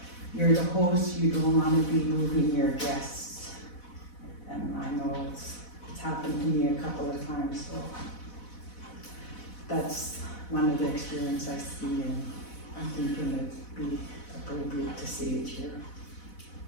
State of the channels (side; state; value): right; late; 4.1 ms